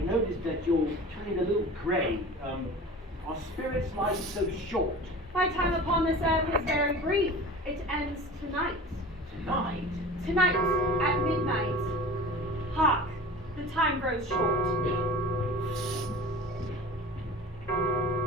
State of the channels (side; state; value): both; normal; correlation 0.38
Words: that you're turning a little grey. Are spirits' lives so short? My time upon this earth is very brief. It ends tonight. Tonight? Tonight, at midnight. Hark, the time grows short.